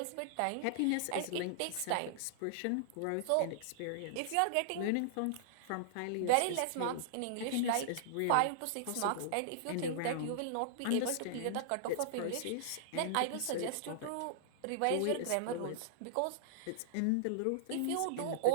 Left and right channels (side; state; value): both; different; correlation -0.01